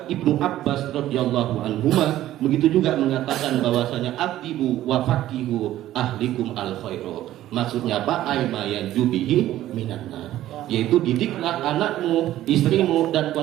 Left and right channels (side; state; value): left; quieter; 13.7 dB